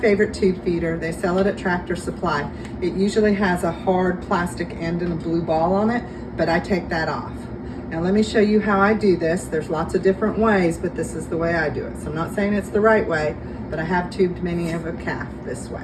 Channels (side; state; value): both; identical; correlation 1.00